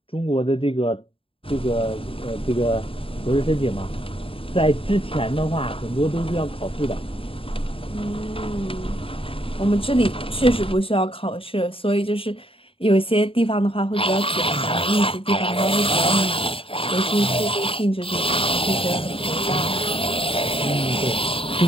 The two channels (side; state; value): right; late; 0.27 ms